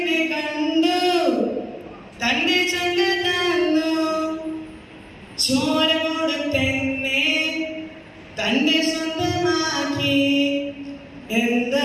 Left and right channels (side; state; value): both; identical; correlation 1.00